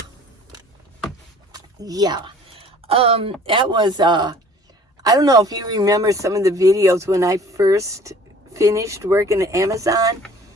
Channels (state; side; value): normal; both; correlation 0.50